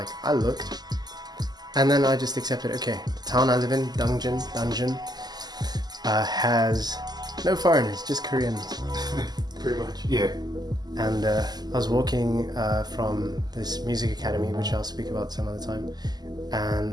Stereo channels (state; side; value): late; left; 0.20 ms